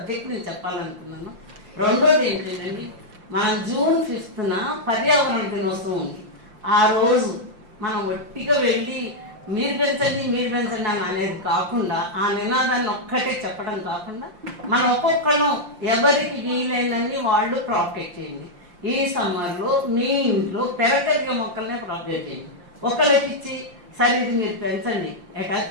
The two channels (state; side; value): late; left; 5.7 ms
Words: నేను చెప్పాలనుకున్నాను. రెండోది ఏంటంటే మనం June 5th పర్యావరణ దినోత్సవం ఉంది. ఆ రోజు మనం ఒట్టిగా వెళ్ళి మీరు పెంచండి అని అనేది కాకుండా ఆ నినాదాన్ని ఒక్కటే చెప్పడం కాకుండా మనం ఒక్కొక్కళ్ళం ఎవరికి వీలైనన్ని వాళ్ళు ప్రాపగేట్ చేయండి. ఈ సమ్మర్లో మీ ఇంట్లో పెరగలిగిన మొక్కలనే ప్రాపగేట్ చేయండి. ఒకళ్ళకి ఇచ్చి సరే ఇది మీరు పెంచండి,